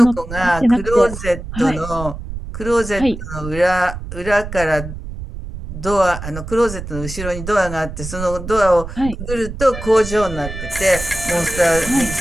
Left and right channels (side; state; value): right; noise; rumble, 9 dB below the sound